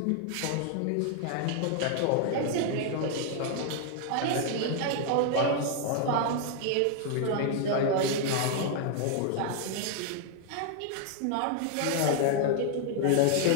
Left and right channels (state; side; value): different; both; correlation 0.00